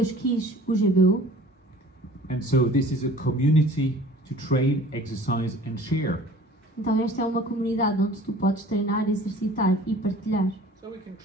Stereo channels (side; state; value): both; normal; correlation 0.47